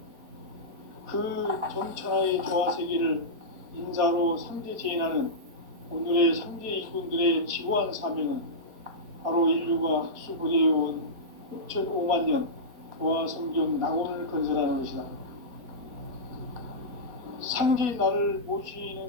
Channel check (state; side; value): late; left; 4.6 ms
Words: 그 정천하의 조화 세계를 인사로 상제 제인하는 오늘의 상제 이군들의 지고한 사명은 바로 인류가 학수부대해온 6,500년 조화 성경 낙원을 건설하는 것이다. 상제인 나를